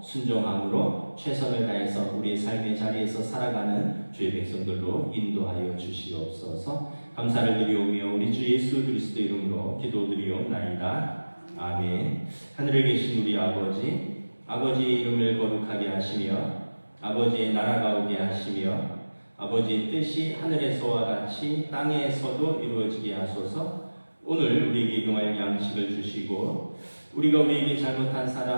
순종함으로 최선을 다해서 우리의 삶의 자리에서 살아가는 주의 백성들로 인도하여 주시옵소서. 감사를 드리오며 우리 주 예수 그리스도 이름으로 기도드리옵나이다. 아멘. 하늘에 계신 우리 아버지, 아버지의 이름을 거룩하게 하시며 아버지의 나라가 오게 하시며 아버지의 뜻이 하늘에서와 같이 땅에서도 이루어지게 하소서. 오늘 우리에게 용할 양식을 주시고 우리가 우리에게 잘못한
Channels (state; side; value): inverted; both; correlation -1.00